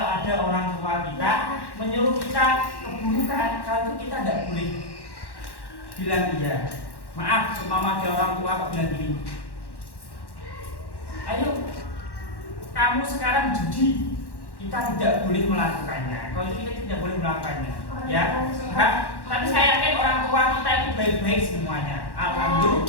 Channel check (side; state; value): right; late; 1.1 ms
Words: ada orang tua kita menyuruh kita keburukan, kalau itu kita tidak boleh bilang iya. Maaf, semama ada orang tua kok bilang gini, ayo kamu sekarang judi, kita tidak boleh melakukannya. Kalau itu kita tidak boleh melakukannya, ya. Tapi saya yakin orang tua kita itu baik-baik semuanya.